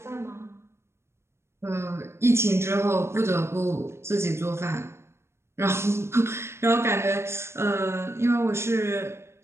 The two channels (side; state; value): left; late; 0.13 ms